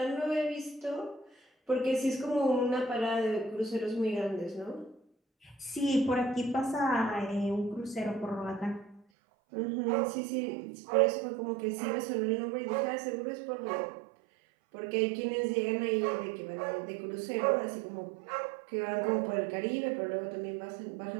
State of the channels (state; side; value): drops out; left; at 9.0 s